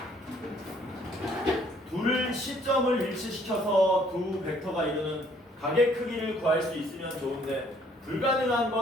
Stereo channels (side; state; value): both; normal; correlation 0.62